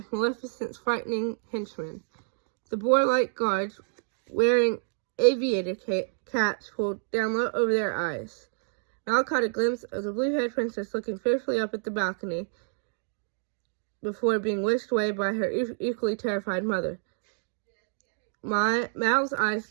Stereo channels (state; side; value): silent; left; digital silence